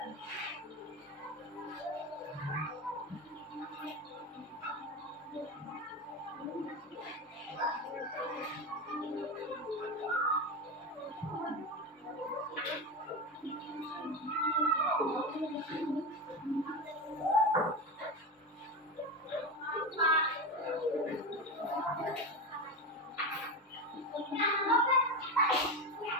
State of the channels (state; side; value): normal; both; correlation 0.19